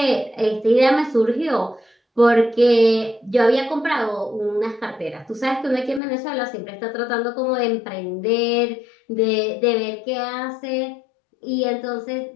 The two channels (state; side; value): drops out; right; at 6.0 s